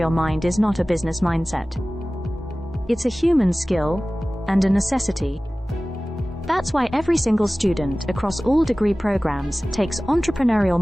mind is not a business mindset. It's a human skill and a necessity. That's why every single student across all degree programs takes Entrepreneurial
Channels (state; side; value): normal; both; correlation 0.98